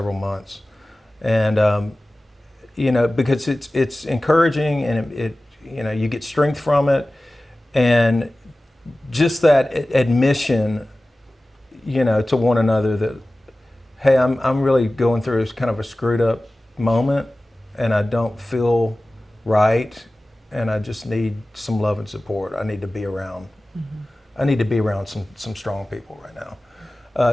months, and because it's encouraging, and it you get strength from it, and just that admission, to one another that, hey, I'm really going through kind of a screwed up moment, and I don't feel right, and I just need some love and support. I need to be around. I need to be around some strong people right now.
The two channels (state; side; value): normal; both; correlation 0.97